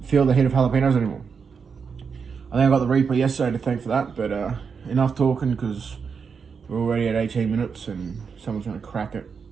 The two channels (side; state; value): left; quieter; 5.9 dB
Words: feel the heat of jalapenos anymore. I think I got the Reaper yesterday to thank for that, but enough talking because we're already at 18 minutes and someone's going to crack it